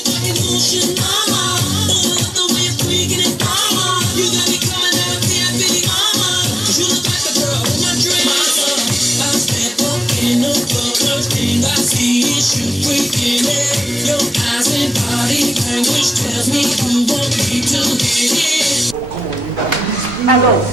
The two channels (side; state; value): both; normal; correlation 0.92